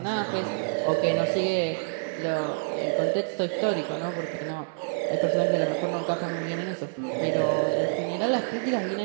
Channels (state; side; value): silent; left; 60 dB below the other